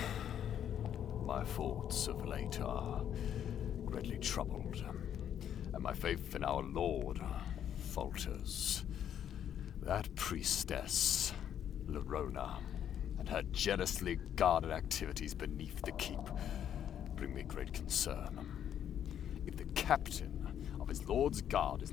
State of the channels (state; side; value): quieter; right; 9.7 dB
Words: My thoughts of late are greatly troubled, and my faith in our Lord falters. That priestess, Lerona, and her jealously guarded activities beneath the keep bring me great concern. If the captain of his Lord's guard is